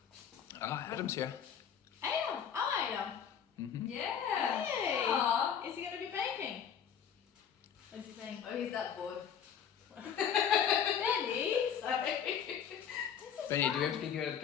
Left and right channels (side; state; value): right; quieter; 8.1 dB